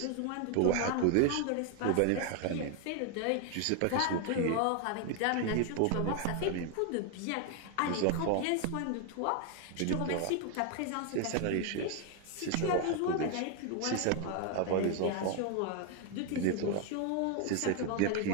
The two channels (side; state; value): both; different; correlation 0.01